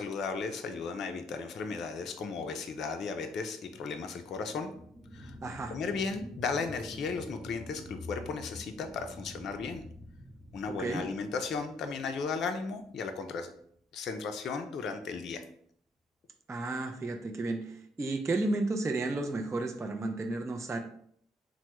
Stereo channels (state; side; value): normal; both; correlation 0.68